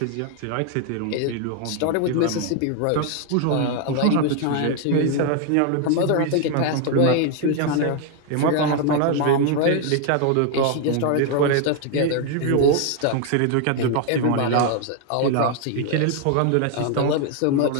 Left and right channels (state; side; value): different; both; correlation 0.01